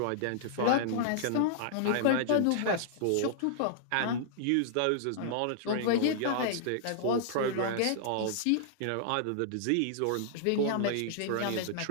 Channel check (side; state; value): both; different; correlation -0.01